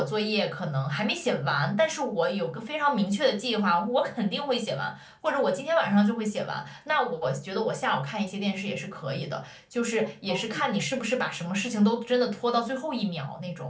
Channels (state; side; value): identical; both; correlation 1.00